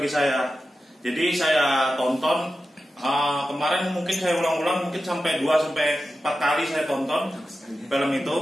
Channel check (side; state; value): both; normal; correlation 0.92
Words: saya. Jadi saya tonton kemarin, mungkin saya ulang-ulang, mungkin sampai 2-4 kali saya tonton film itu.